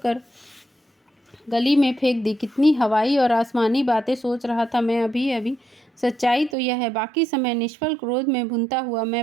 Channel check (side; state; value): left; drops out; at 6.6 s